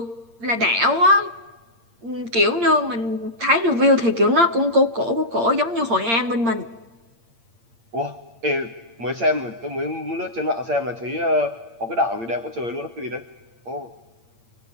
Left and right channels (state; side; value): late; left; 8.7 ms